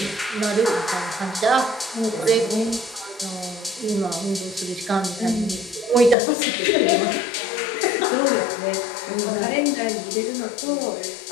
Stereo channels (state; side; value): drops out; right; at 6.2 s